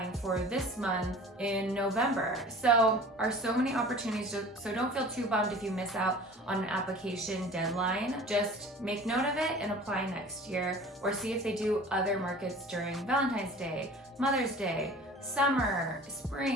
for this month in November. So so many opportunities, so don't feel too bummed if you miss out on an application deadline. Just make note of it and apply next year, or see if they do other markets during Valentine's Day, Mother's Day, summer,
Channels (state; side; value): normal; both; correlation 0.43